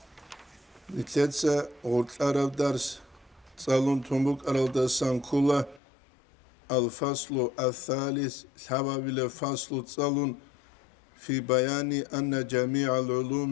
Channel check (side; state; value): right; drops out; at 5.8 s